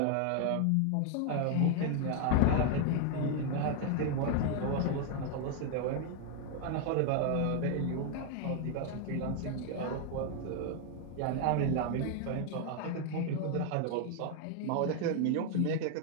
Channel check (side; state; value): both; different; correlation 0.00